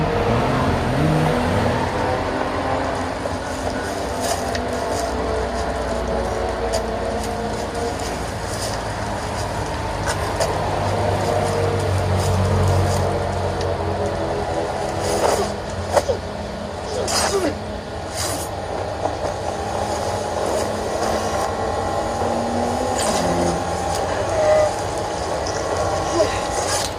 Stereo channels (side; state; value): both; identical; correlation 1.00